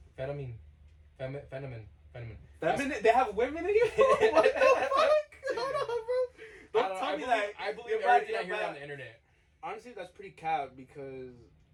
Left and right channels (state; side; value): identical; both; correlation 1.00